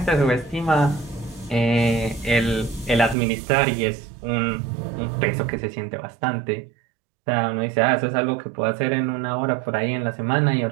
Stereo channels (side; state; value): left; drops out; at 3.2 s